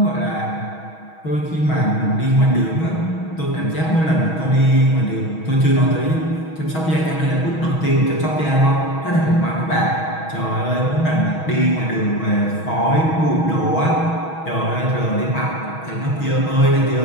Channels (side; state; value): right; late; 6.3 ms